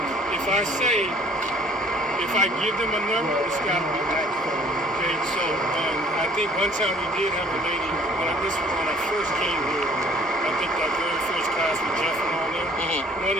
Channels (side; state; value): both; normal; correlation 0.54